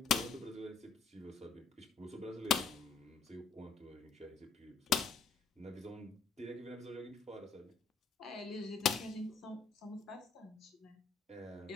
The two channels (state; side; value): quieter; right; 5.5 dB